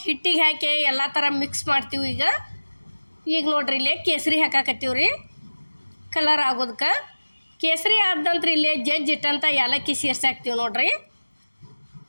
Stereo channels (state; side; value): inverted; both; correlation -1.00